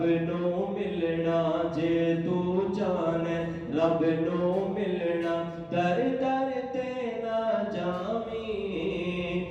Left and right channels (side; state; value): both; identical; correlation 1.00